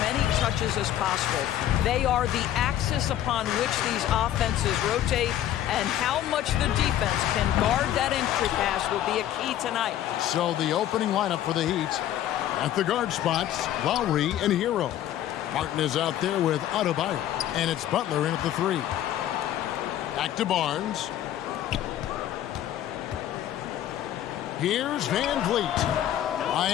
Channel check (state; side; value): quieter; right; 12.0 dB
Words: many touches as possible. They are the axis upon which these offenses rotate, and how much the defense can guard that entry pass will be a key tonight. So the opening lineup for the Heat. At the guard spots, Lowry and Hero. Martin is out there with Adebayo, and it's Butler in at the 3. Back to Barnes. Here's Van Vliet.